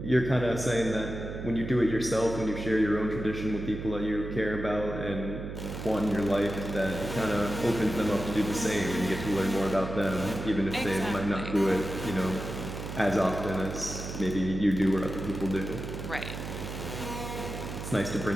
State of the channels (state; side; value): noise; right; hum, 7 dB below the sound